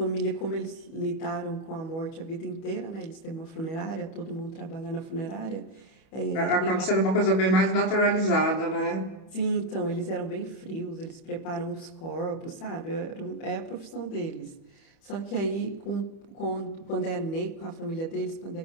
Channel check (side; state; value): right; late; 31 ms